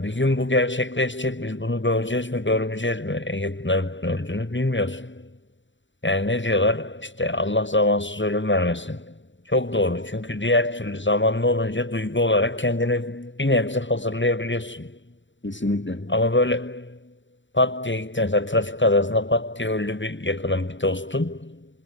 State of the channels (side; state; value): right; late; 0.54 ms